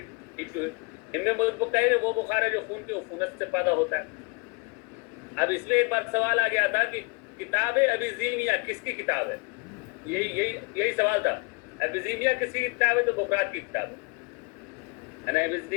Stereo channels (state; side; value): quieter; right; 30.5 dB